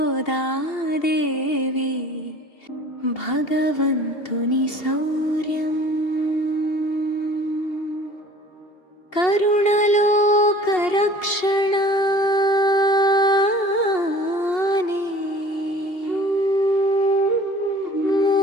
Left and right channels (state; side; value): late; right; 2.8 ms